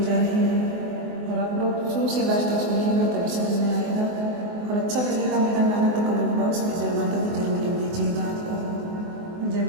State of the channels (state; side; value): late; left; 24 ms